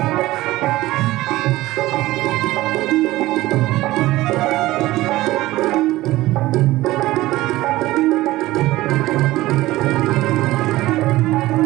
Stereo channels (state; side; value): quieter; left; 17.5 dB